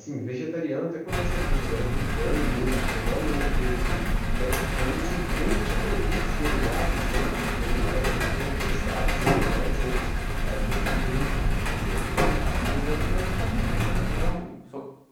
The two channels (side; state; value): both; identical; correlation 1.00